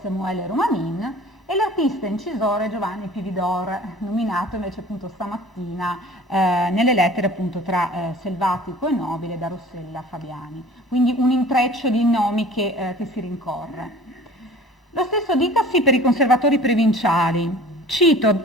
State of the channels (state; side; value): normal; both; correlation 0.45